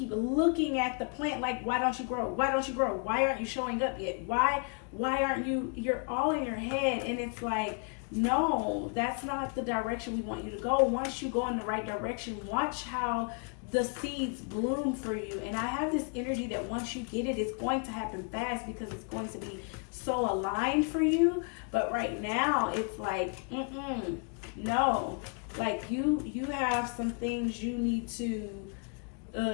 looking at the plant like, why don't you grow? Why don't you grow? Why aren't you showing up yet? Why aren't you? You're all in your head, and it's like, no, that's not the direction we want you to go. Once you go in the right direction, watch how the seeds bloom for you. And I have this energy that once you get it, it's going to happen fast because it's going to be so aligned for you. But right now, it's like, no. Like, you have some things you need to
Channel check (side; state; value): right; quieter; 39.1 dB